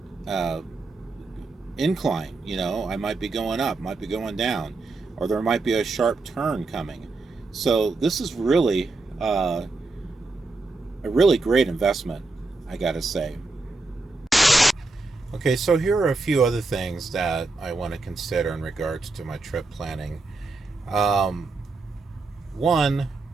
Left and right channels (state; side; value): quieter; left; 3.5 dB